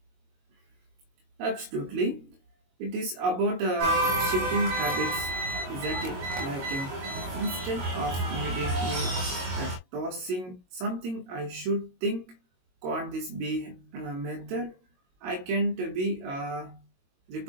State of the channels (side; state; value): left; late; 22 ms